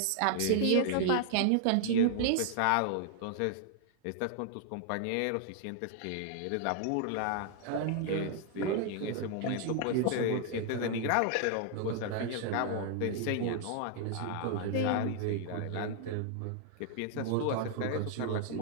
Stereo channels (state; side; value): different; both; correlation 0.00